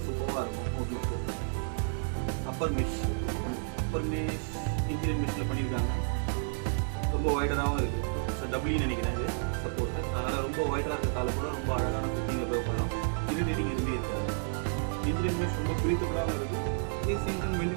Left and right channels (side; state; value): left; silent; digital silence